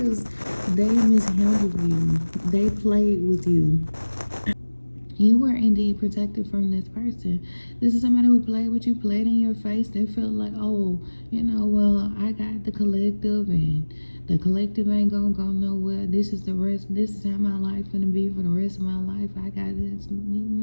they mishandled you. They played with you. You were indeed protected from this person. This is somebody who played with you, played in your face. They felt like, oh, well, I got the collective, and the collective ain't gonna go nowhere. This is the rest. This is how my life gonna be for the rest of my life. I got this.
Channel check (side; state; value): both; inverted; correlation -1.00